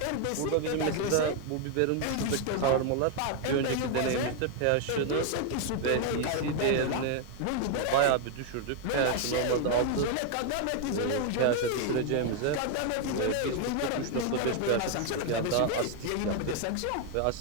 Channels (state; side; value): different; both; correlation 0.01